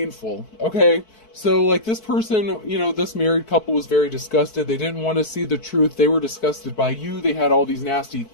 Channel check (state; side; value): late; right; 4.6 ms